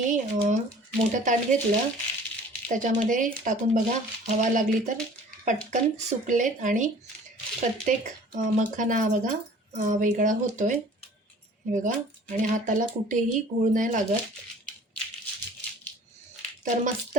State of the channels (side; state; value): both; normal; correlation 0.49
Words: मोठं ताट घेतलं. त्याच्यामध्ये टाकून बघा हवा लागली तर पटकन सुकलेत आणि प्रत्येक मखाना बघा वेगळा होतोय. हे बघा आणि हाताला कुठेही गूळ नाही लागत. तर मस्त